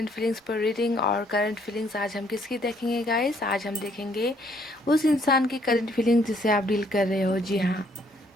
फीलिंग्स पर रीडिंग। और करंट फीलिंग्स आज हम किसकी देखेंगे गाइस? आज हम देखेंगे उस इंसान की करंट फीलिंग्स जिससे आप डील कर रहे हो। जी हाँ,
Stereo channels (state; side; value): normal; both; correlation 0.67